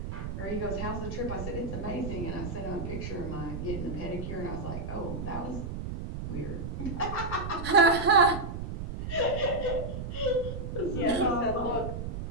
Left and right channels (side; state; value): right; noise; rumble, 5 dB below the sound